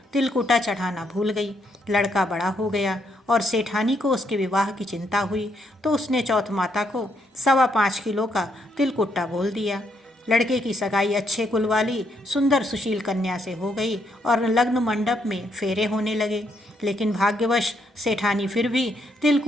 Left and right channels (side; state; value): both; normal; correlation 0.75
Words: तिलकुट्टा चढ़ाना भूल गई। लड़का बड़ा हो गया और सेठानी को उसके विवाह की चिंता हुई तो उसने चौथ माता को 5.25 किलो का तिलकुट्टा बोल दिया। लड़के की सगाई अच्छे कुल वाली सुंदर सुशील कन्या से हो गई और लग्न मंडप में फेरे होने लगे। लेकिन भाग्यवश सेठानी फिर भी